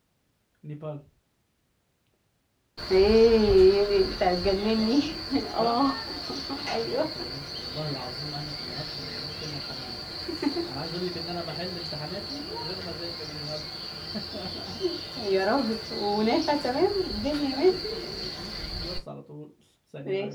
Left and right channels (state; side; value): identical; both; correlation 1.00